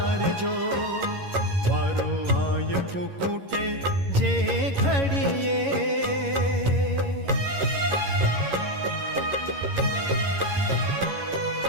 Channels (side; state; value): left; late; 11 ms